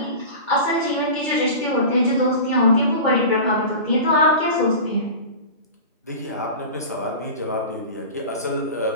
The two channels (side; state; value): both; inverted; correlation -0.32